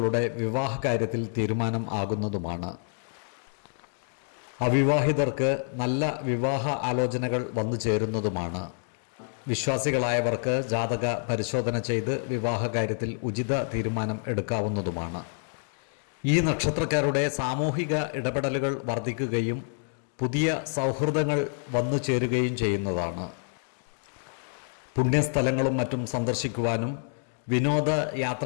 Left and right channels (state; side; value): silent; right; digital silence